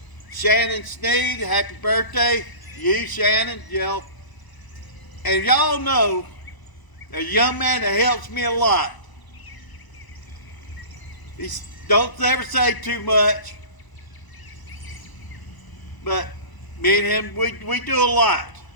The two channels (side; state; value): right; late; 1.0 ms